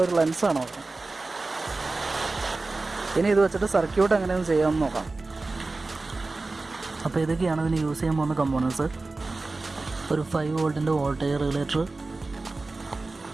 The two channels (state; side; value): quieter; left; 3.4 dB